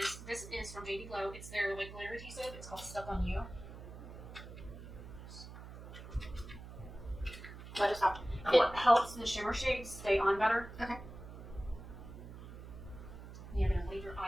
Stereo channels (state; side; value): noise; right; hum, 13 dB below the sound